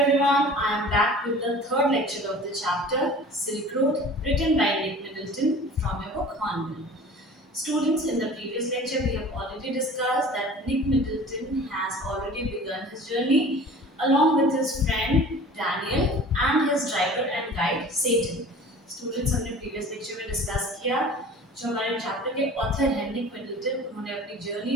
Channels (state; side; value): normal; both; correlation 0.43